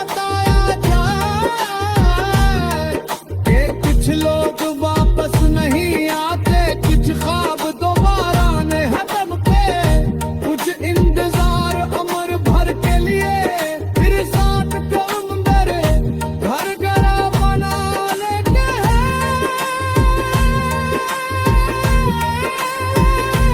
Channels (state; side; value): identical; both; correlation 1.00